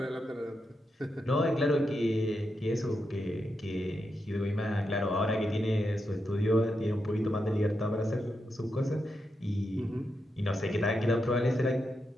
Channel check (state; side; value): normal; both; correlation 0.85